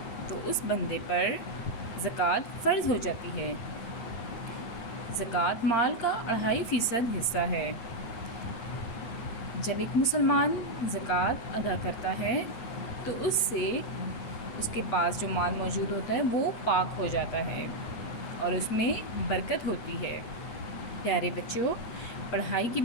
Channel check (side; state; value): right; late; 8.7 ms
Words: تو اس بندے پر زکوٰۃ فرض ہو جاتی ہے۔ زکوٰۃ مال کا 2.5% حصہ ہے۔ جب ایک مسلمان زکوٰۃ ادا کرتا ہے تو اس سے اس کے پاس جو مال موجود ہوتا ہے وہ پاک ہو جاتا ہے اور اس میں برکت ہوتی ہے۔ پیارے بچوں، پڑھائی کے